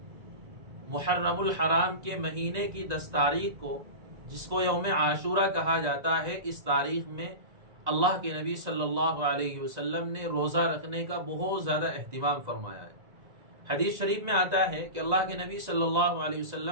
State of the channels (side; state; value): left; late; 1.9 ms